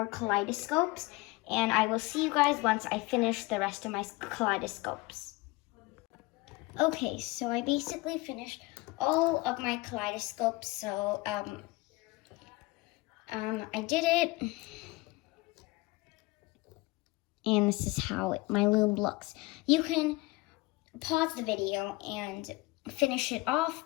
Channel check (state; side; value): quieter; right; 22.0 dB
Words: kaleidoscopes, and I will see you guys once I finish the rest of my kaleidoscopes. Okay, so I basically finished all of my kaleidoscopes. So I did it. And this is how my loom looks. You can pause the video and finish it off.